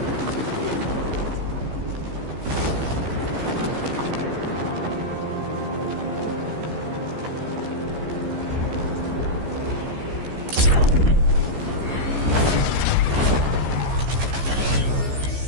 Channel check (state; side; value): late; left; 15 ms